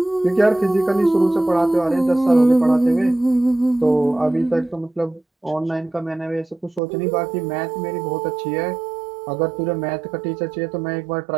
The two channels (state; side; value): drops out; left; at 6.8 s